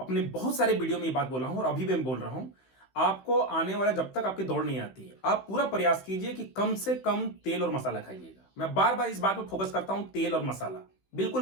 बहुत सारे वीडियो में ये बात बोला हूं और अभी भी मैं बोल रहा हूं, आपको आने वाला, जब तक आपकी दौड़ नहीं आती है, आप पूरा प्रयास कीजिए कि कम से कम तेल और मसाला खाइएगा। मैं बार बार इस बात पर फोकस करता हूं, तेल और मसाला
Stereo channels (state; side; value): late; right; 16 ms